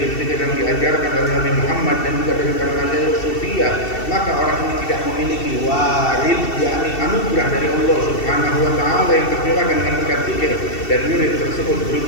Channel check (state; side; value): late; right; 2.7 ms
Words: yang diajarkan oleh Nabi Muhammad dan juga dari para masyayikh sufiyah, maka orang ini tidak memiliki warid, yakni anugerah dari Allah Subhanahu wa taala yang tercurahkan dengan berkat zikir, dan wirid tersebut